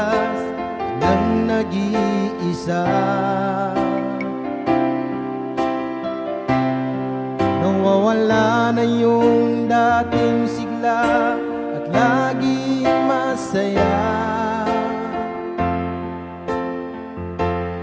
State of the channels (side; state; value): both; identical; correlation 1.00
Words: nang nag-iisa, nawawala na yung dating sigla at laging masaya.